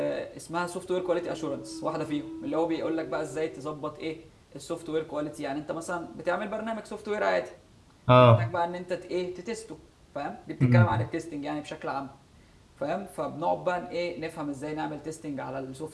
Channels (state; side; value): identical; both; correlation 1.00